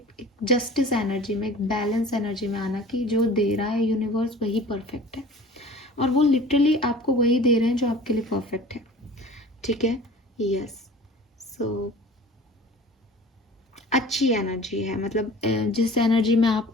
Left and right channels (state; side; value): normal; both; correlation 0.43